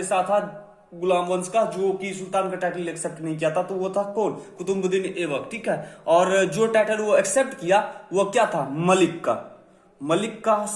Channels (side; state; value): both; identical; correlation 1.00